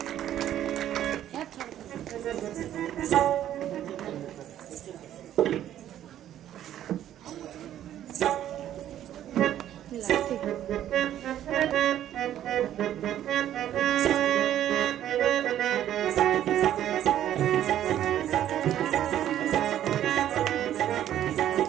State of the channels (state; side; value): quieter; left; 11.5 dB